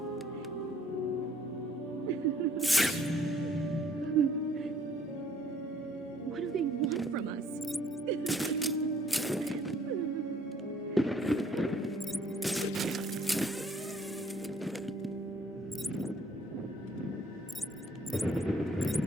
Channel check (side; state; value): both; normal; correlation 0.60